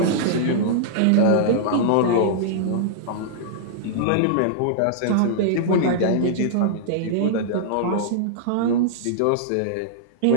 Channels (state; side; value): different; both; correlation -0.02